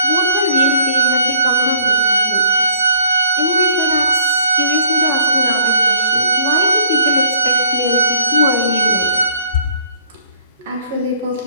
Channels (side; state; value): both; inverted; correlation -0.60